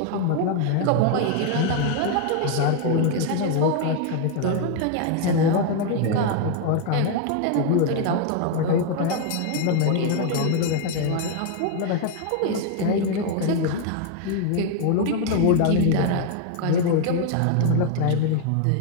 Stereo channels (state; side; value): different; both; correlation 0.01